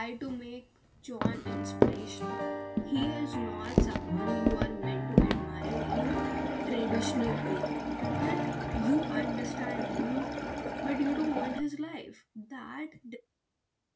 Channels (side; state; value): both; identical; correlation 1.00